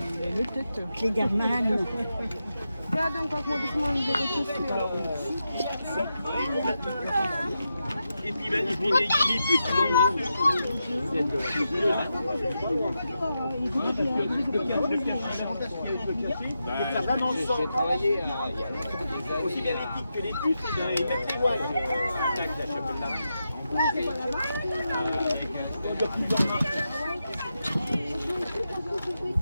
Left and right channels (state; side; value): inverted; both; correlation -0.87